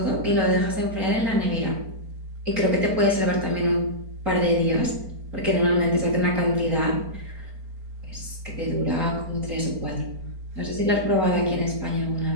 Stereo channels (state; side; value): late; left; 4.4 ms